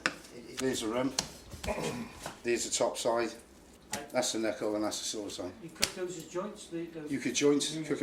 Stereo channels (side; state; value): both; identical; correlation 1.00